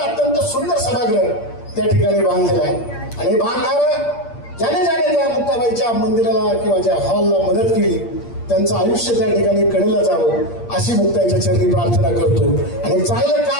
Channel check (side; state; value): right; late; 8.6 ms